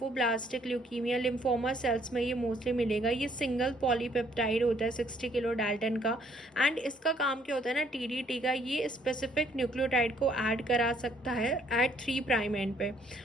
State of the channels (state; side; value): normal; both; correlation 0.65